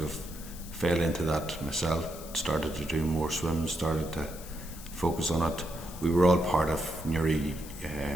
fell into that myself. Started to do more swims, started to focus on it. We were all part of Newry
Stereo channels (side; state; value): left; noise; hiss, 15 dB below the sound